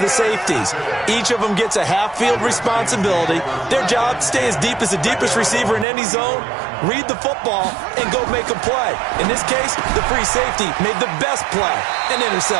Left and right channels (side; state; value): left; drops out; at 5.9 s